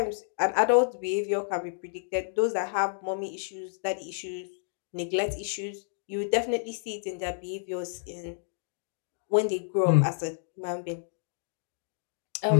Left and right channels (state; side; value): silent; right; digital silence